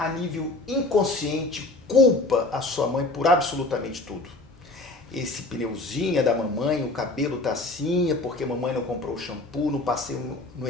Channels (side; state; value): right; quieter; 3.0 dB